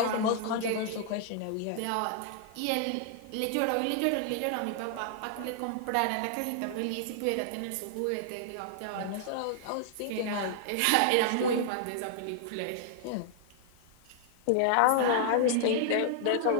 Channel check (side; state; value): both; different; correlation -0.01